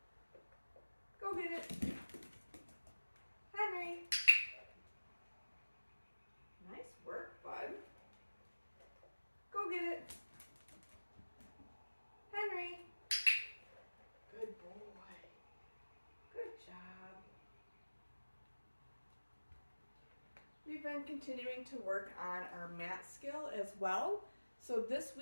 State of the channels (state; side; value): inverted; both; correlation -1.00